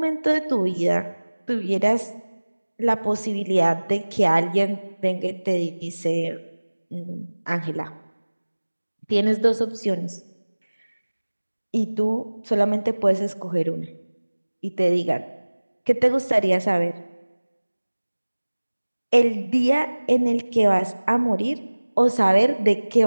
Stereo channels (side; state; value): both; inverted; correlation -1.00